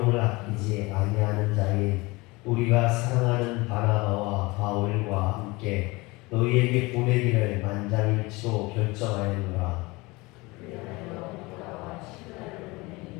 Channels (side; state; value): right; quieter; 23.4 dB